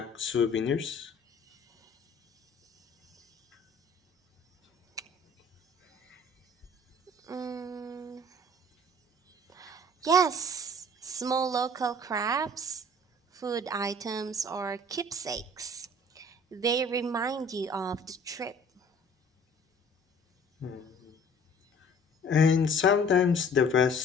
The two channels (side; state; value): both; normal; correlation 0.51